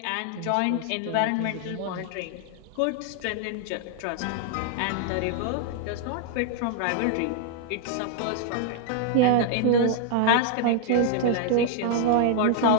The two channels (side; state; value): both; different; correlation 0.00